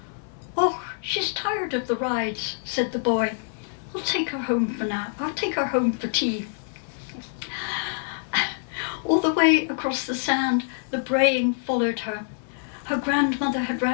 "Oh, she's tired of the rides," said the boy. "I'll take her home for now. I'll take her home for tea." All the way across the sand, the braying followed her. Her grandmother had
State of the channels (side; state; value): right; silent; 56 dB below the other